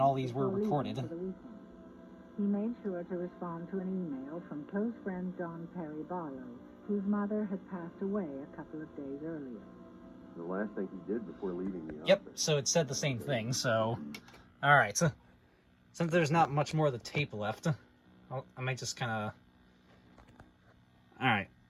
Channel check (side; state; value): both; identical; correlation 1.00